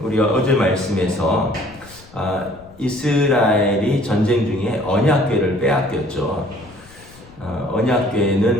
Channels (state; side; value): noise; left; rumble, 23 dB below the sound